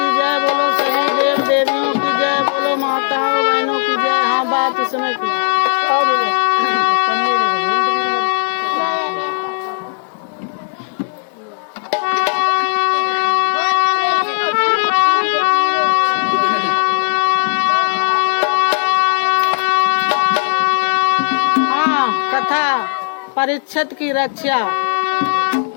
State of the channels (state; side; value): silent; right; digital silence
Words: जय, बोलो सभी देव देवियों की जय, बोलो माताओं बहनों की जय। हाँ, बात इसमें की हाँ, कथा परीक्षित की रक्षा,